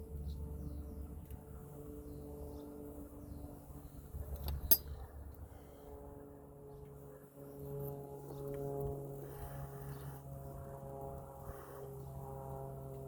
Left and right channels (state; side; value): identical; both; correlation 1.00